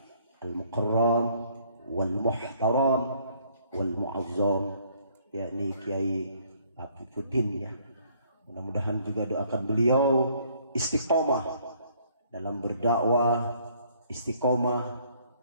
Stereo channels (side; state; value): both; inverted; correlation -0.63